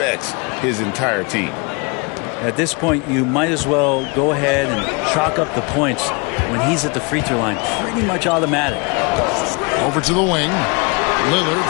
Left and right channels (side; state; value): right; quieter; 30.7 dB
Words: his entire team. At this point, you might as well go ahead and chalk up the points when he's at the free throw line. Pretty much automatic. Over to the wing. Lillard